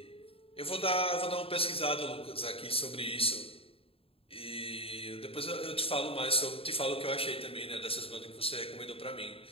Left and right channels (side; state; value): right; late; 0.27 ms